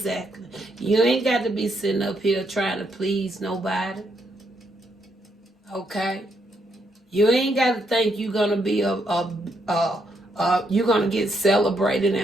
You ain't got to be sitting up here trying to please nobody. Okay? You ain't got to think you're going to be you're going to get celebrated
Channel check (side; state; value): both; normal; correlation 0.77